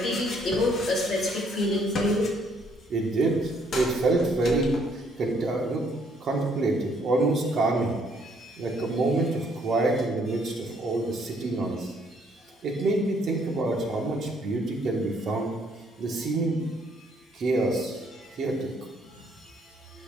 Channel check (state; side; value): normal; both; correlation 0.67